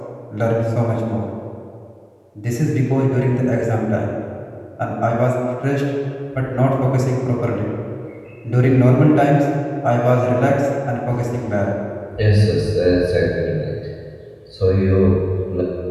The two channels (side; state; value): both; identical; correlation 1.00